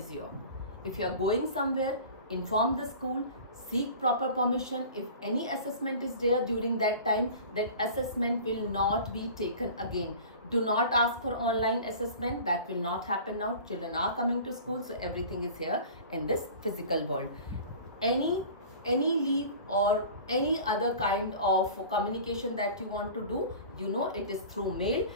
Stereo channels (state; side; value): inverted; both; correlation -0.40